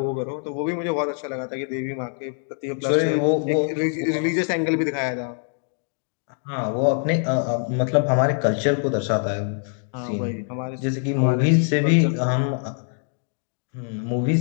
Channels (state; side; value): silent; right; 58 dB below the other